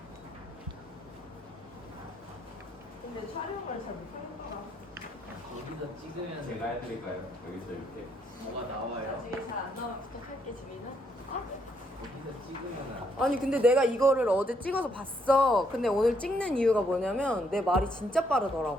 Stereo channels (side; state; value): both; normal; correlation 0.73